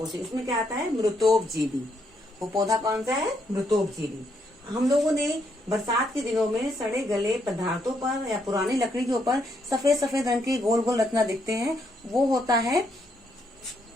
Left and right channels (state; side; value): normal; both; correlation 0.75